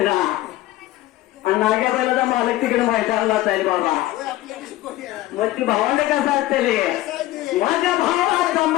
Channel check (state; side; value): quieter; right; 16.0 dB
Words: ना आणि नाग्या बैलाचा मालक तिकडे मैदानाला जाईल बाबा मग ती भावंड कसं असते माझ्या भावाचा